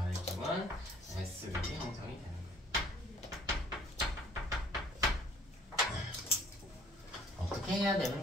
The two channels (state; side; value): normal; both; correlation 0.56